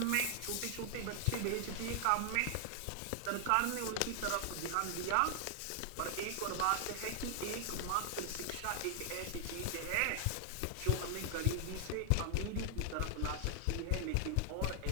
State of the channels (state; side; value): different; both; correlation 0.00